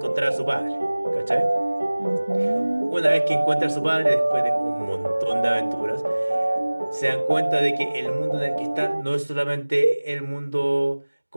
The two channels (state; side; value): inverted; both; correlation -1.00